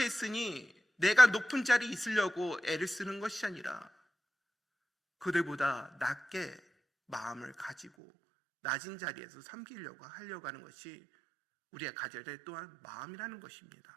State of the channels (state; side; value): drops out; left; at 7.9 s